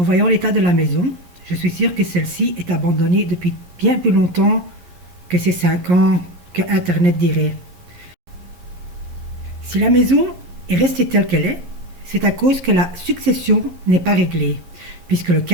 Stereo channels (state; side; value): late; left; 11 ms